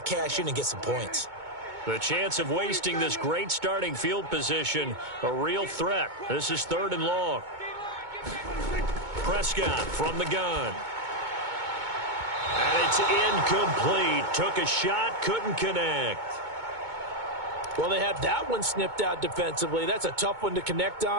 cash in and get some points. The chance of wasting this great starting field position, a real threat. This is 3rd and long. Prescott from the gun. And it's incomplete. Took a shot, couldn't connect. Well, they had that one snipped out defensively. That's a tough one to connect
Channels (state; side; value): late; left; 2.2 ms